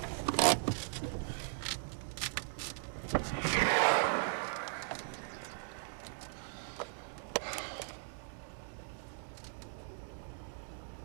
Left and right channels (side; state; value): left; silent; digital silence